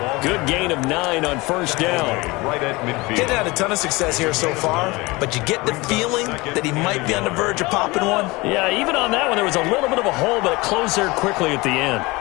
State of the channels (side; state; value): right; quieter; 23.2 dB